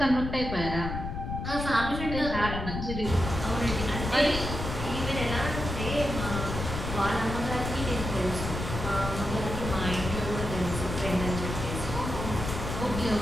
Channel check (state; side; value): noise; left; rumble, 5 dB below the sound